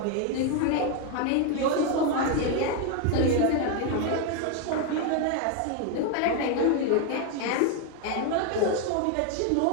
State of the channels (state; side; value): different; both; correlation 0.01